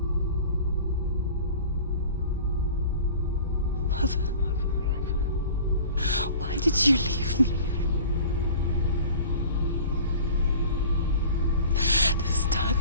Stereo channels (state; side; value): inverted; both; correlation -0.42